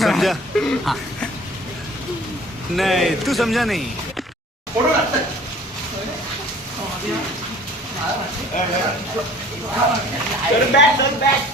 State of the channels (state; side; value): normal; both; correlation 0.49